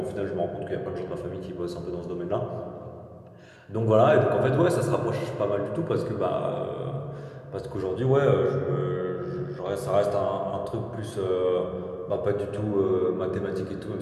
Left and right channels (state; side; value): identical; both; correlation 1.00